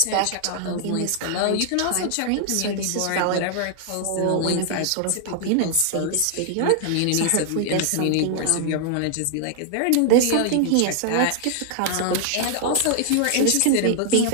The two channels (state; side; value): different; both; correlation -0.01